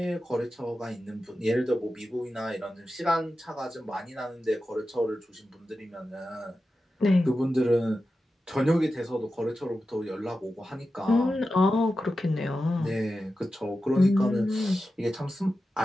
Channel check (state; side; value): normal; both; correlation 0.92